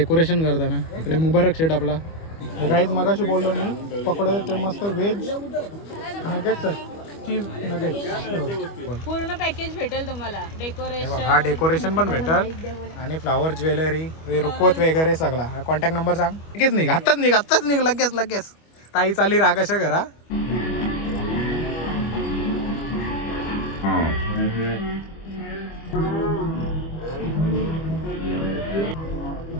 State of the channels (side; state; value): right; late; 25 ms